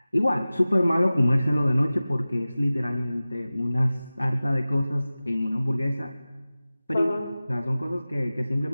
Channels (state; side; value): inverted; both; correlation -0.97